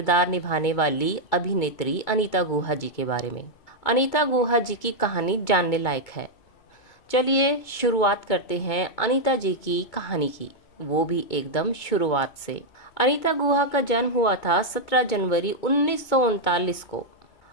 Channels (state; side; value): late; right; 2.2 ms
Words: निभाने वाली अभिनेत्री अनीता गुहा जी के बारे में। अनीता गुहा जी की कहानी जानने लायक है। चलिए शुरुआत करते हैं अनीता जी की कहानी की, वो भी एकदम शुरुआत से। अनीता गुहा का जन्म हुआ था 17 जनवरी 1939 को।